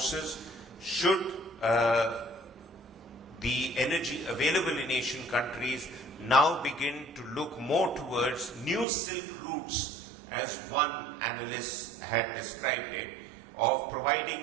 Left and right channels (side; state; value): left; drops out; at 8.8 s